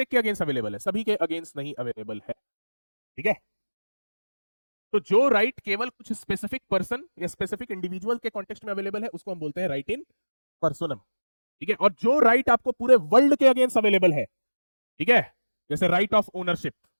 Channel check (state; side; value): inverted; both; correlation -1.00